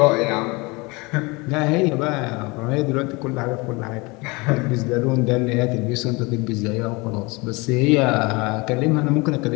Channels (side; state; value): right; quieter; 25.8 dB